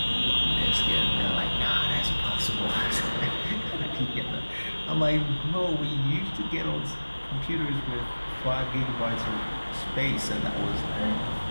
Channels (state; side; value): inverted; both; correlation -1.00